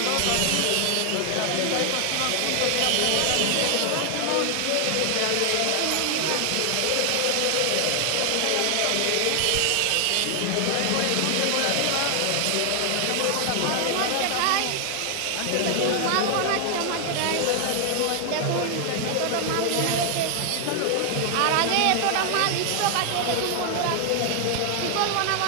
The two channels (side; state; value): both; different; correlation 0.00